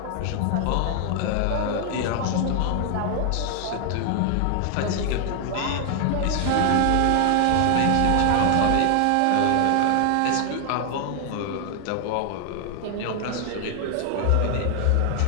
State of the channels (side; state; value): both; different; correlation 0.00